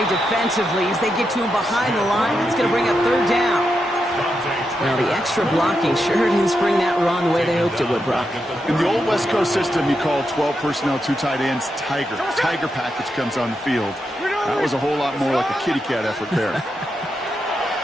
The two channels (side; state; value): both; normal; correlation 0.85